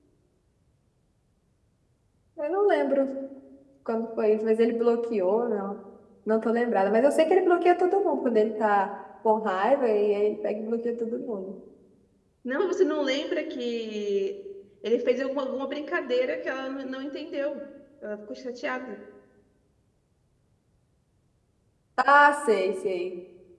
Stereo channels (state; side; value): identical; both; correlation 1.00